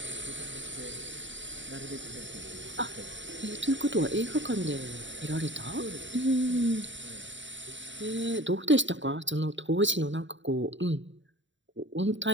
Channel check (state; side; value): late; left; 0.54 ms